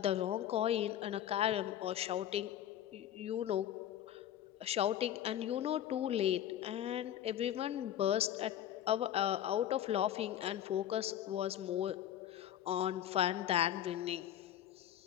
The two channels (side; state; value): right; quieter; 11.2 dB